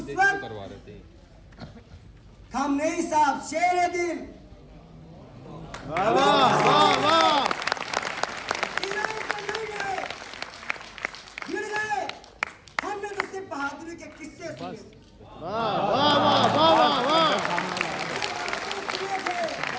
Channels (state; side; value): identical; both; correlation 1.00